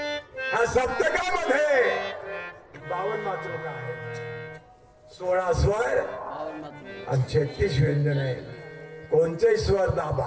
हा सप्तकामध्ये 52 मातृका आहे 16 स्वर आणि 36 व्यंजन आहे कोणतेही स्वर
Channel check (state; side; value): identical; both; correlation 1.00